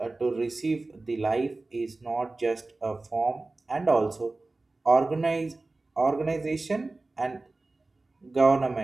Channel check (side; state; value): left; quieter; 3.2 dB